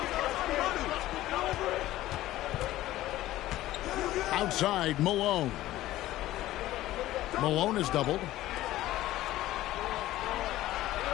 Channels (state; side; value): quieter; right; 15.4 dB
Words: Outside, Malone. Malone is doubled.